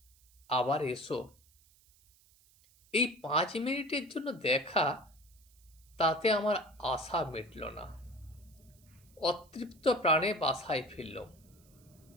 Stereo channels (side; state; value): right; noise; hiss, 29 dB below the sound